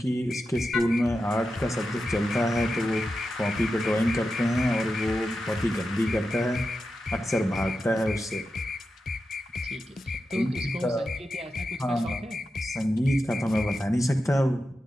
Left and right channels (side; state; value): both; normal; correlation 0.90